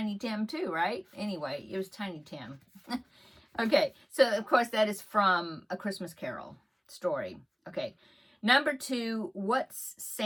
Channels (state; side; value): identical; both; correlation 1.00